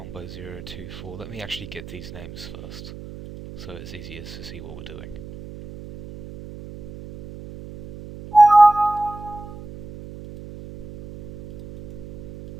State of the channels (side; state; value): right; noise; hum, 13 dB below the sound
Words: 0, 2, 4. Let me actually get these names first so it's easier to see what we're doing.